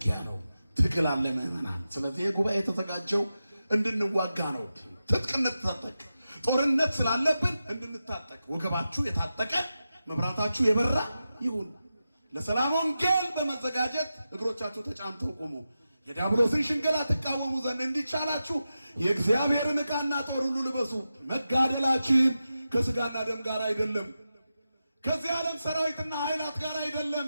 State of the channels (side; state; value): both; inverted; correlation -0.91